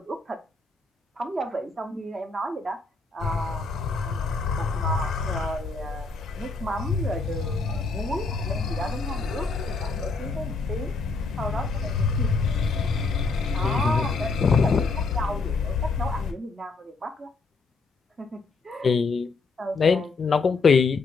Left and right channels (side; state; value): right; quieter; 4.1 dB